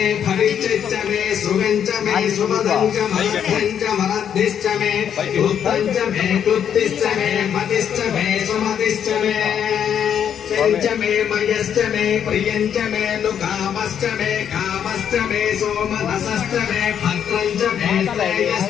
भविष्यच्च मे सुगं च मे सुमदं च मध्यं च मरद्धिश्च मे उत्तं च मे कृत्तिश्च मे मतिश्च मे सुमतिश्च मे च मे मयश्च मे प्रियं च मे नुकामश्च मे कामश्च मे सोमनसश्च मे भद्रं च मे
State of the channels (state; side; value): quieter; right; 8.7 dB